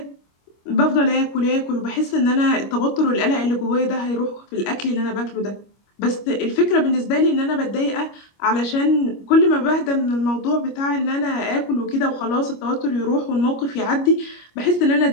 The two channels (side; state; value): right; late; 25 ms